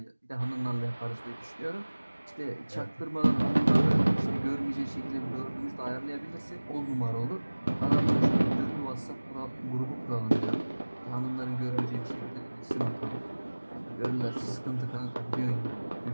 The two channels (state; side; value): inverted; both; correlation -1.00